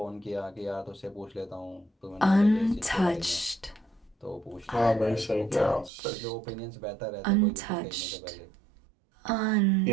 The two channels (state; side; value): drops out; left; at 5.9 s